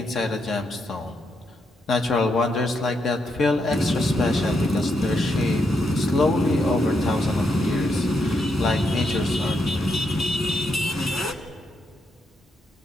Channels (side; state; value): both; normal; correlation 0.80